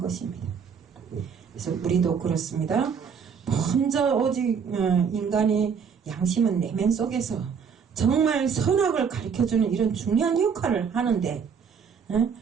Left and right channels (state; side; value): quieter; left; 6.6 dB